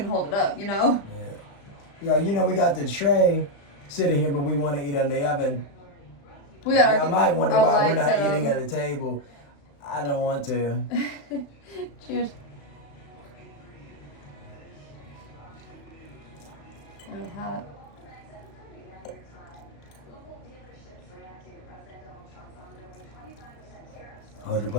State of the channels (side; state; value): right; late; 35 ms